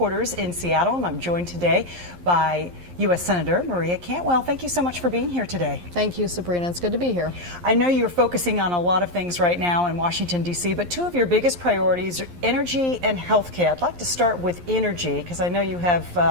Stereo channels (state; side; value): late; left; 11 ms